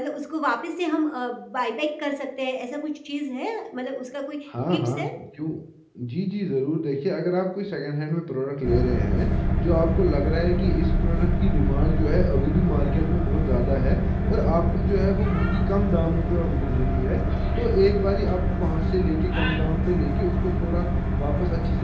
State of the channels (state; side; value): identical; both; correlation 1.00